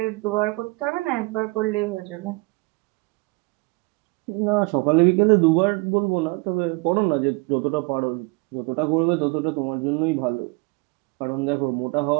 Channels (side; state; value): left; quieter; 26.8 dB